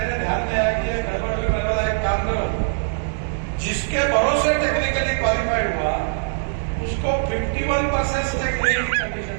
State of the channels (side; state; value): left; silent; digital silence